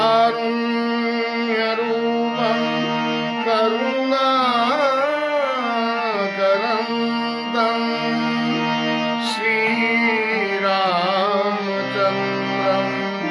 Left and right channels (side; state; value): both; identical; correlation 1.00